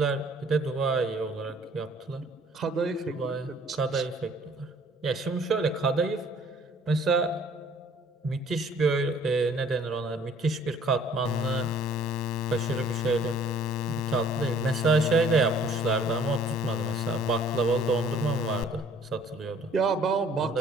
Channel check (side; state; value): both; normal; correlation 0.56